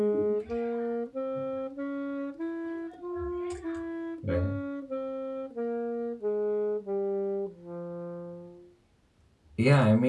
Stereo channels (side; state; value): both; identical; correlation 1.00